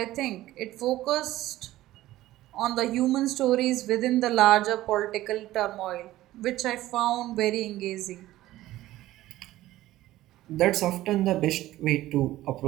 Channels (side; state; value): left; quieter; 15.5 dB